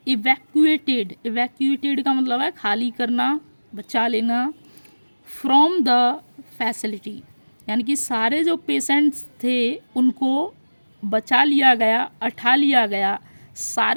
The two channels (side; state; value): both; inverted; correlation -1.00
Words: evacuated, evacuated का मतलब है खाली करना, बचा लेना, फ्रॉम द फैसिलिटी, यानी कि सारे जो पेशेंट्स थे उनको बचा लिया गया, उठा लिया गया